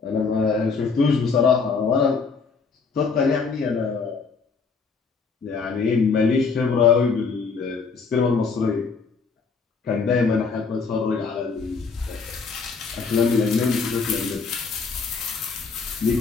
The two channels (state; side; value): quieter; right; 5.0 dB